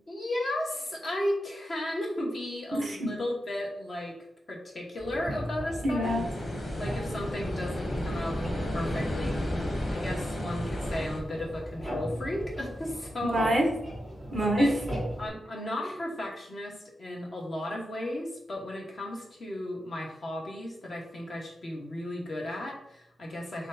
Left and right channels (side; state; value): both; normal; correlation 0.89